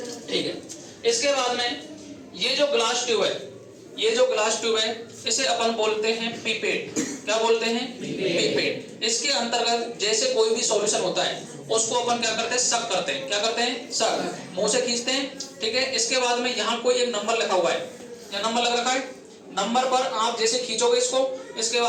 ठीक है। इसके बाद में ये जो ग्लास ट्यूब है, ये जो ग्लास ट्यूब है इसे अपन बोलते हैं पिपेट। क्या बोलते हैं? पिपेट। इसके अंतर्गत जैसे कोई भी सॉल्यूशन होता है उसको अपन क्या करते हैं? सक करते हैं। क्या करते हैं? सक। मुंह से खींचते हैं, ठीक है। इसके बाद में यहाँ कोई एक नंबर लिखा हुआ है, क्या नंबर लग रखा है? नंबर पर आप जैसे खींचोगे इसको, इसके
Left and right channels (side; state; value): both; identical; correlation 1.00